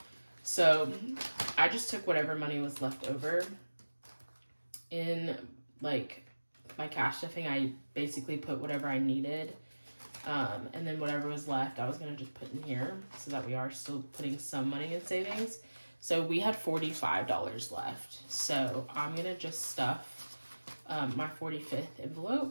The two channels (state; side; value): inverted; both; correlation -1.00